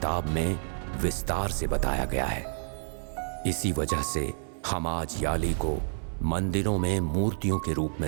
में विस्तार से बताया गया है। इसी वजह से हम आज याली को मंदिरों में मूर्तियों के रूप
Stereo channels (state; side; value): silent; left; 58 dB below the other